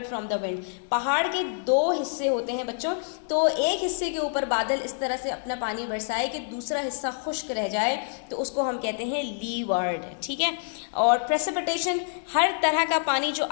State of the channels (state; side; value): silent; right; digital silence